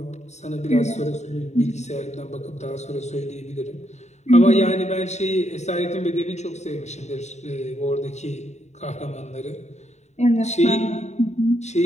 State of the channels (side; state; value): right; late; 0.33 ms